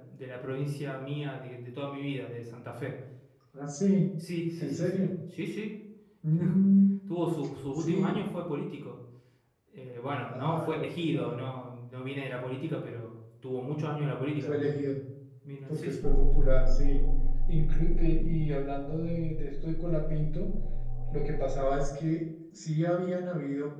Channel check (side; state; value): both; identical; correlation 1.00